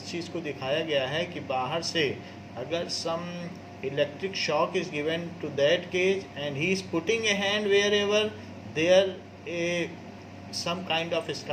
चीज़ को दिखाया गया है कि बाहर से अगर some electric shock is given to that cage and he is putting a hand wherever there a some kind of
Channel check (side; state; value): both; identical; correlation 1.00